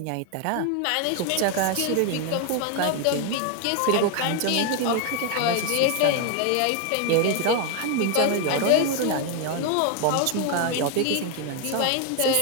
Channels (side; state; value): both; different; correlation 0.01